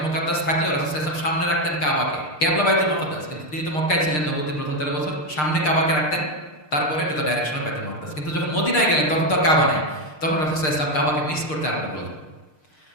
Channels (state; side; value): late; right; 6.6 ms